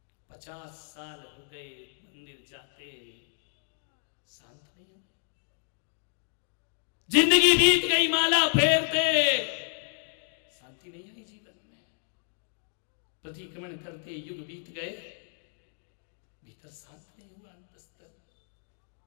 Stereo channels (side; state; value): right; silent; digital silence